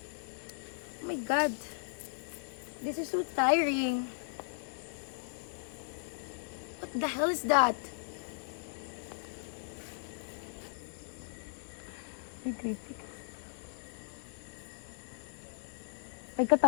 Oh my God. This is so tiring. What the hell is that? Ay,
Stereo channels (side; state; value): right; silent; 53 dB below the other